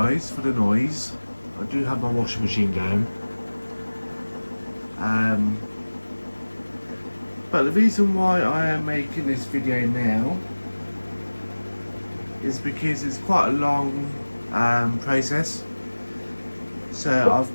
for the noise. I do have my washing machine going. But the reason why I am making this video now is because it's quite a long process. So I've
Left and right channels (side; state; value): both; inverted; correlation -1.00